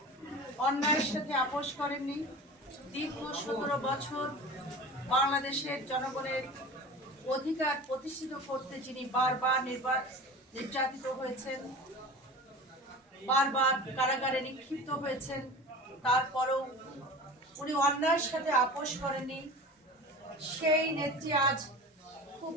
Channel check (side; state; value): both; normal; correlation 0.35